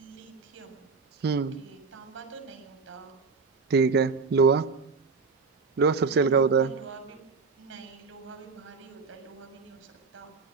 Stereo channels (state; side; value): quieter; left; 4.6 dB